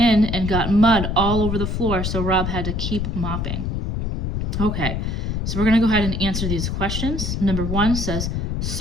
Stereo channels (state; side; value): noise; left; rumble, 1 dB below the sound